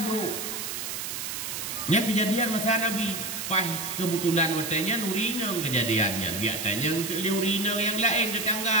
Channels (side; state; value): right; noise; hiss, 5 dB below the sound